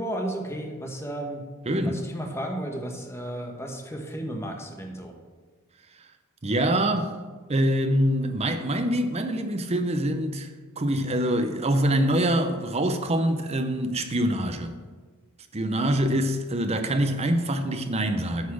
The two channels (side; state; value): both; normal; correlation 0.63